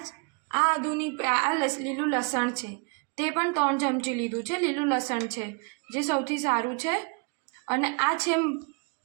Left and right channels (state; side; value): quieter; left; 34.9 dB